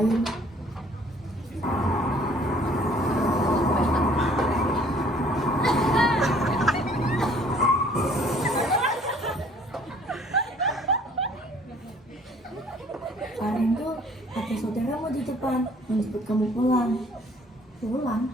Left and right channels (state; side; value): normal; both; correlation 0.57